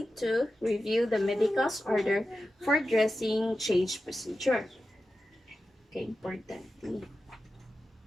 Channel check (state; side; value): normal; both; correlation 0.92